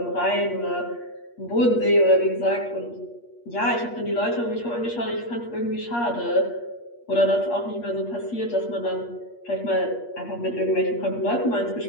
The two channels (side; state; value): right; late; 8.5 ms